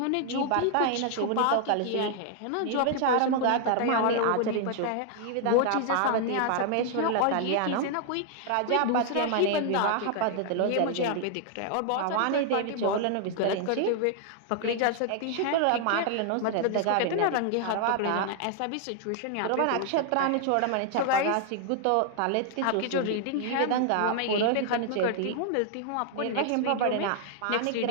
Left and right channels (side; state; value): both; different; correlation 0.00